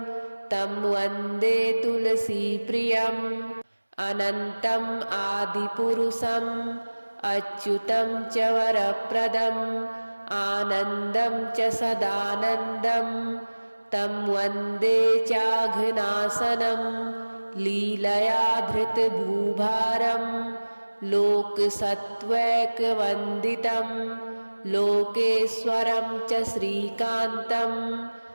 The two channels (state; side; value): inverted; both; correlation -1.00